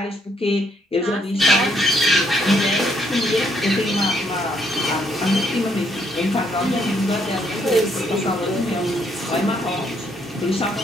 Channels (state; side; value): normal; both; correlation 0.71